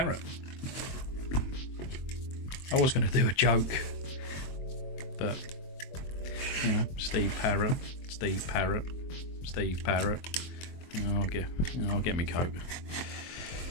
I was going to do a joke, but you know, Steve Parrott. I'll get me coke.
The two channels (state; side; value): late; right; 23 ms